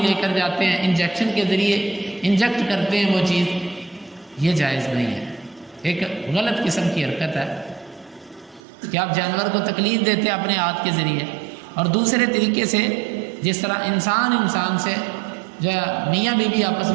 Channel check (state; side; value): drops out; left; at 8.6 s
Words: کر جاتے ہیں، انجیکشن کے ذریعے انجیکٹ کرتے ہیں وہ چیز، یہ جائز نہیں ہے، ایک غلط قسم کی حرکت ہے کہ آپ جانور کو تکلیف دیتے ہیں اپنے ہاتھ کے ذریعے، اور دوسرے طریقے سے جس طرح انسان سے جو میاں بیوی آپس